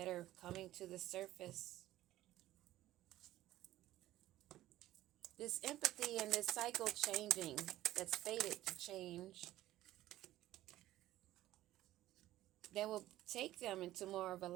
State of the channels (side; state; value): left; quieter; 14.9 dB